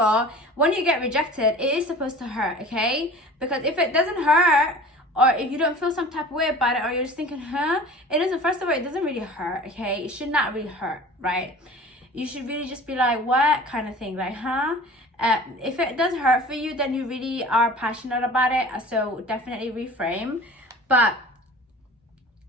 when you get rejected, it is supposed to hurt, okay? Because if it doesn't hurt, or if you don't feel some type of way about it, or you're just thinking, it doesn't, first of all, it doesn't really hurt, okay? It should not really hurt, right? You should really just be like, what kind of thing, like, if it does hurt for you, then you really are passionate about it, so definitely reframe. But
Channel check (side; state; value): both; normal; correlation 0.41